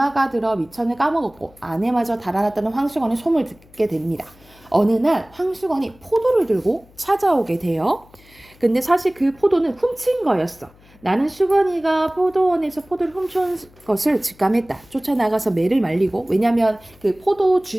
들어 미천을 까먹었고 안에마저 달아났다는 황수건의 소문을 듣게 됩니다. 어느 날 황수건이 포도를 들고 찾아오게 돼요. 근데 사실 그 포도는 훔친 거였어. 나는 수건이가 포도원에서 포도를 훔친 것을 직감했다. 쫓아나가서 매를 말리고 왜냐면 그 포도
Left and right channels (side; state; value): left; noise; hum, 27 dB below the sound